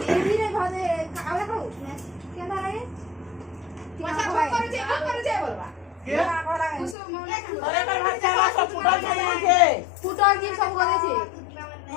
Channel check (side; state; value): right; drops out; at 7.0 s